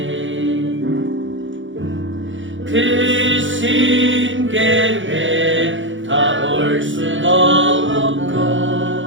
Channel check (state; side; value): late; left; 0.56 ms